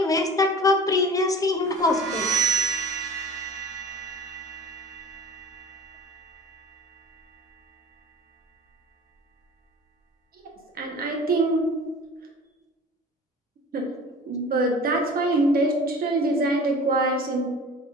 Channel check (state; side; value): normal; both; correlation 0.42